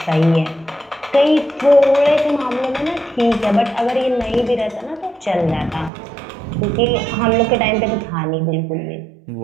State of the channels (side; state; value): left; drops out; at 5.9 s